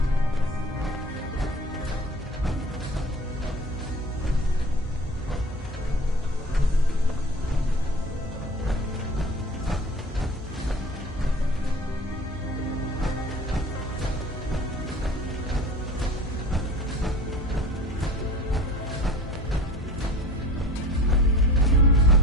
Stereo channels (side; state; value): both; normal; correlation 0.42